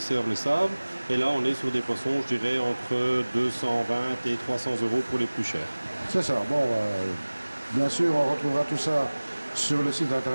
le savent. Et là, on est sur des poissons, je dirais, entre 220 et 300 euros pour les plus chers. C'est ça. Bon, bien sûr, on retrouvera tout ça sur le site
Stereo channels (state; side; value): inverted; both; correlation -1.00